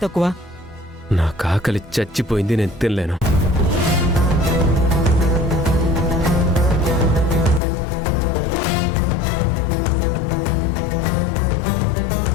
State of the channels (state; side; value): drops out; right; at 7.6 s